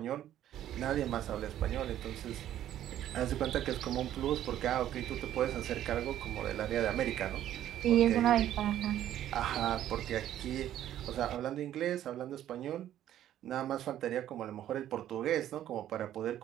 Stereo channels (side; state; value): left; quieter; 11.9 dB